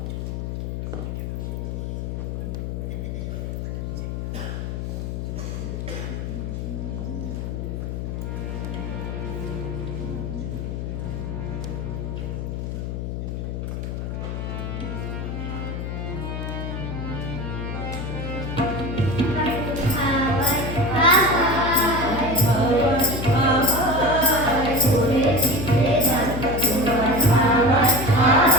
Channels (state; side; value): noise; left; hum, 4 dB below the sound